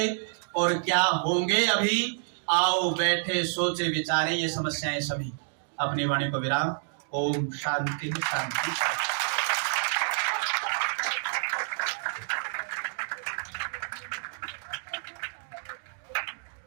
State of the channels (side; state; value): left; silent; digital silence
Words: और क्या होंगे अभी, आओ बैठे सोचे विचारे, ये समस्याएं सभी। अपनी वाणी को विराम। ओम शांति शांति शांति।